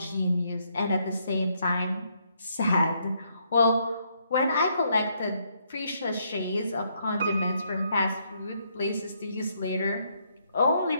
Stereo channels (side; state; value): both; inverted; correlation -0.73